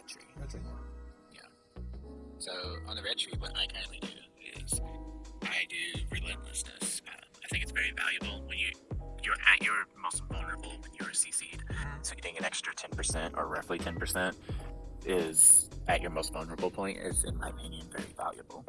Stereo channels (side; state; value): both; identical; correlation 1.00